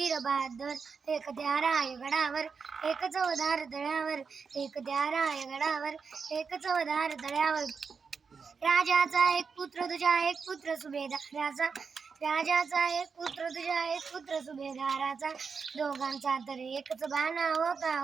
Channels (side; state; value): left; quieter; 5.5 dB